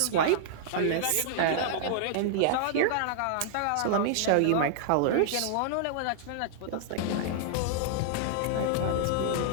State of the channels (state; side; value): different; both; correlation -0.01